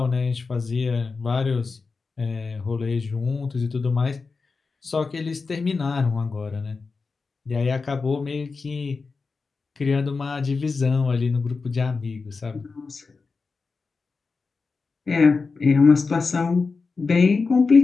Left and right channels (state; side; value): quieter; right; 4.4 dB